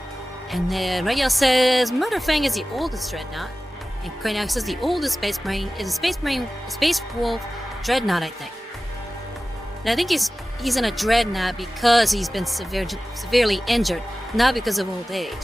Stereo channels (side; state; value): both; normal; correlation 0.96